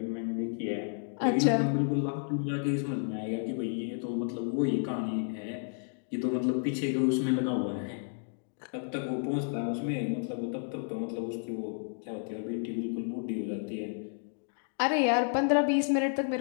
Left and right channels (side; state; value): right; silent; digital silence